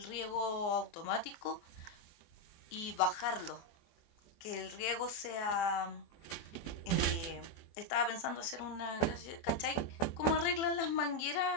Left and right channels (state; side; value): late; right; 24 ms